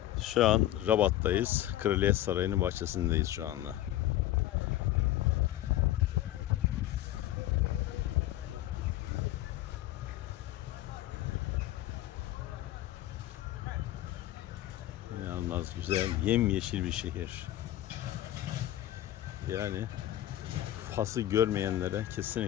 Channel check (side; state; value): right; quieter; 14.0 dB